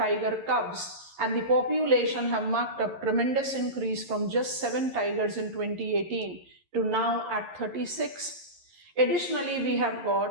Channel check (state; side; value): late; left; 11 ms